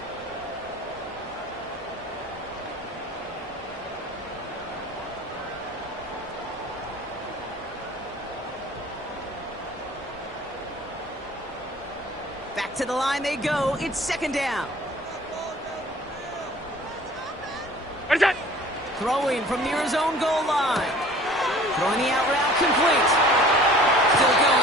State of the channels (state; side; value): normal; both; correlation 0.48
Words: Back to the line they go. It's 2nd down. What is that? Throwing from near his own goal line. Throwing the out route complete. Still